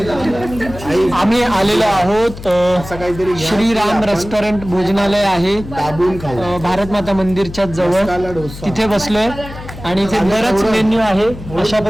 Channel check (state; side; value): noise; left; hum, 13 dB below the sound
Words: आम्ही आलेलो आहोत असं काहीतरी घ्या. श्रीराम रेस्टॉरंट भोजनालय आहे दाबून खाऊ. भारत माता मंदिरच्या जवळ. मसाला डोसा. तिथे बसलोय आणि इथे बरंच मेन्यू आहे. अशा